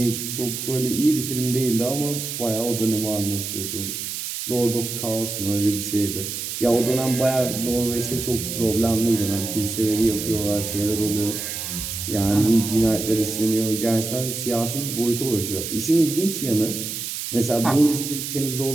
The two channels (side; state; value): right; noise; hiss, 5 dB below the sound